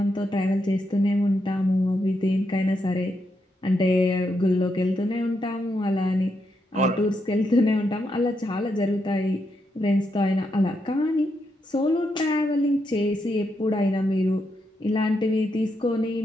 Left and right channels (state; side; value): normal; both; correlation 0.82